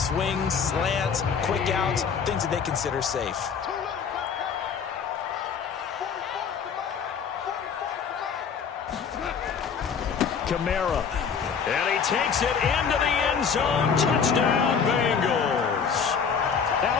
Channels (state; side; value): quieter; right; 6.5 dB